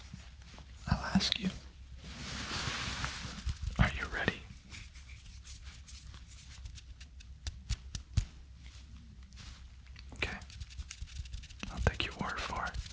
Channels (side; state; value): both; identical; correlation 1.00